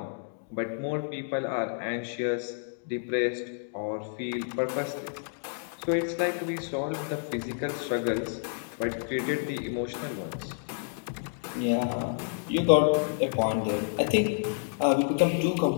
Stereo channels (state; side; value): silent; right; digital silence